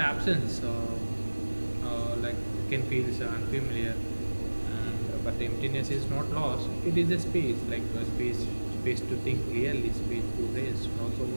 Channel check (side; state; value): both; inverted; correlation -1.00